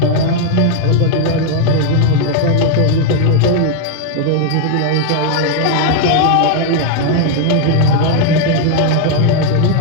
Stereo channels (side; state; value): both; different; correlation 0.01